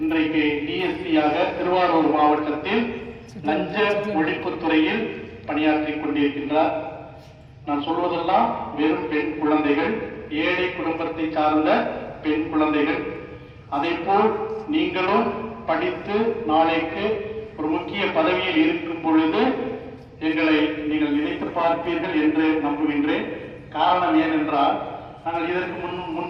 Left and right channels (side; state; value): both; identical; correlation 1.00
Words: இன்றைக்கு டிஎஸ்பியாக திருவாரூர் மாவட்டத்தில் லஞ்ச ஒழிப்புத்துறையில் பணியாற்றிக் கொண்டிருக்கின்றார். நான் சொல்வதெல்லாம் வெறும் பெண் குழந்தைகள், ஏழை குடும்பத்தை சார்ந்த பெண் குழந்தைகள். அதை போல் நீங்களும் படித்து நாளைக்கு ஒரு முக்கிய பதவியில் இருக்கும் பொழுது எங்களை நீங்கள் நினைத்து பார்ப்பீர்கள் என்று நம்புகின்றேன். காரணம் ஏனென்றால் நாங்கள் இதற்கு